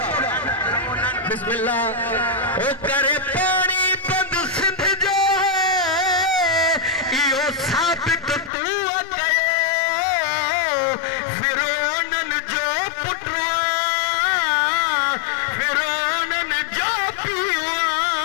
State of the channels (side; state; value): right; drops out; at 8.5 s